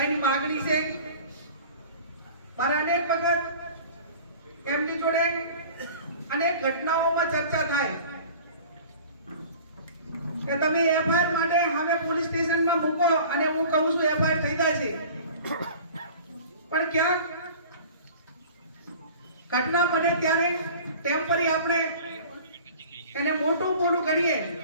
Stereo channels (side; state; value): both; inverted; correlation -0.43